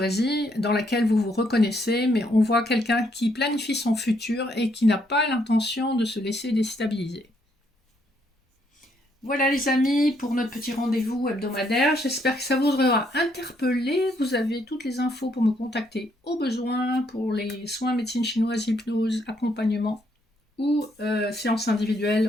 dans laquelle vous vous reconnaissez, mais on voit quelqu'un qui planifie son futur et qui n'a pas l'intention de se laisser déstabiliser. Voilà les amis, pour notre petit rendez-vous hebdomadaire. J'espère que ça vous aura interpellé. Vous avez toutes les infos pour me contacter au besoin pour les soins médecine chinoise, hypnose, accompagnement ou séances individuelles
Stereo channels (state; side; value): normal; both; correlation 0.72